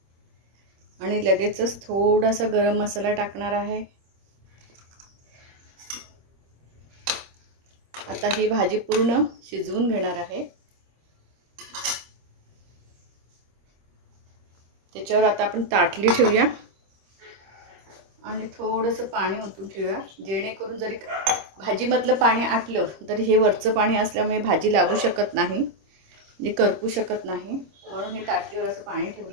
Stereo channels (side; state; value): left; late; 25 ms